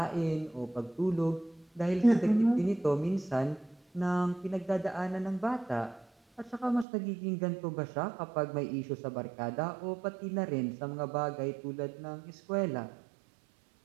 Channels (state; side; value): drops out; left; at 6.9 s